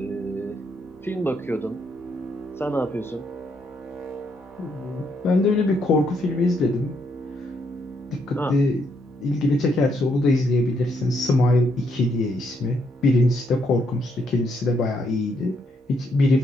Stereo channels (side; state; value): both; normal; correlation 0.75